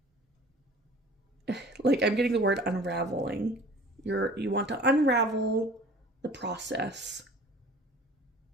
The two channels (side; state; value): both; normal; correlation 0.46